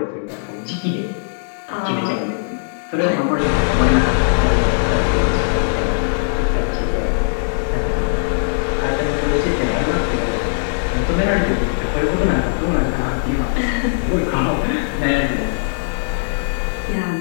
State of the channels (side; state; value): right; silent; 64 dB below the other